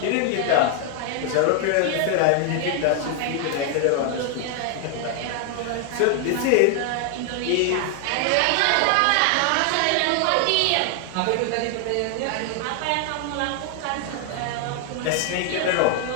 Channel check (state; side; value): different; both; correlation 0.00